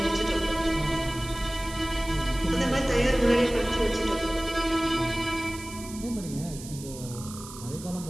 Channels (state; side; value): noise; right; hiss, 14 dB below the sound